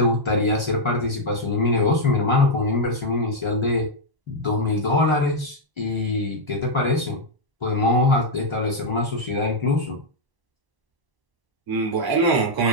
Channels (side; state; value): left; late; 1.0 ms